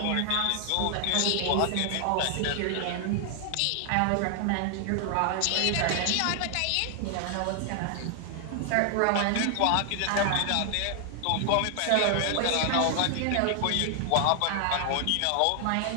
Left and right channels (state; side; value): different; both; correlation 0.00